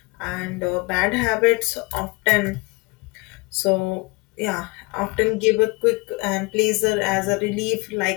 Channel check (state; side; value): quieter; right; 26.7 dB